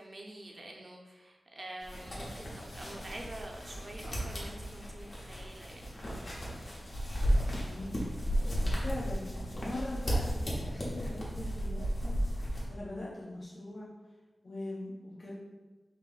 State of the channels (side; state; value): both; normal; correlation 0.95